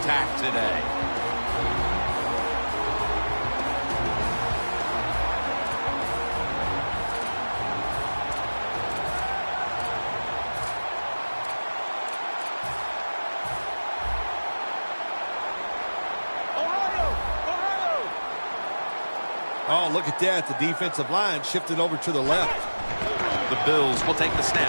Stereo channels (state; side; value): inverted; both; correlation -1.00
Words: today. Oh, look at that. The defensive line shifted over to the left. The Bills will take the